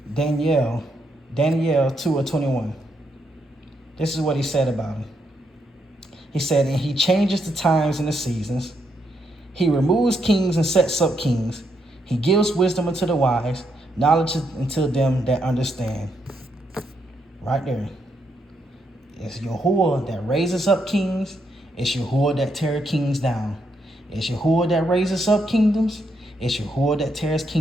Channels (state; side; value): normal; both; correlation 0.78